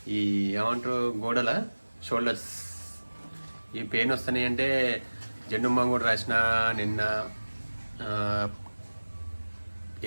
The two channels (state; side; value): inverted; both; correlation -1.00